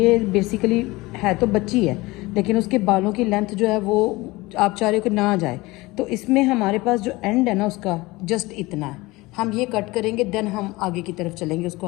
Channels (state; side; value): quieter; right; 21.4 dB